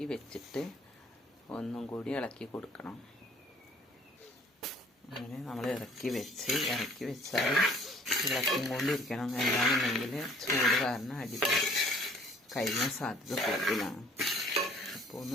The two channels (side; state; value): both; normal; correlation 0.55